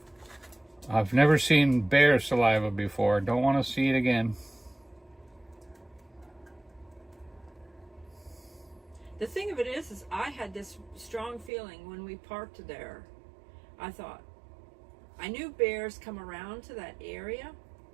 I've never seen bear saliva before. Don't want to see it again. The thing of it is I had this strong feeling when we parked there. I thought, I knew bears come around to that area.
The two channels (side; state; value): left; drops out; at 11.5 s